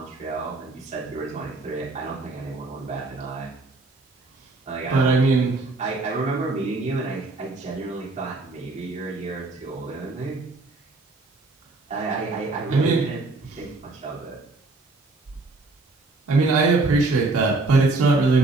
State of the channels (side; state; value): left; quieter; 3.3 dB